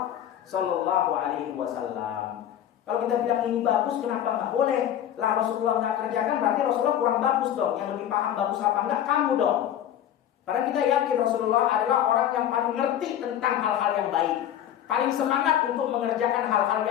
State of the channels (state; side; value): quieter; right; 10.8 dB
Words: Shallallahu Alaihi Wasallam. Kalau kita bilang ini bagus, kenapa nggak boleh? Lah Rasulullah nggak kerjakan, berarti Rasulullah kurang bagus dong. Yang lebih paham bagus apa enggak, kamu dong. Padahal kita yakin Rasulullah adalah orang yang paling ngerti tentang hal-hal yang baik, paling semangat untuk mengerjakan hal-hal